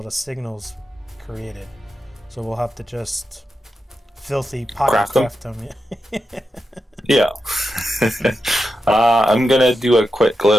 the signals created. So we'll have to just filthy pocket craft them. Yeah. I'm going to do a quick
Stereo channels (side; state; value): both; normal; correlation 0.89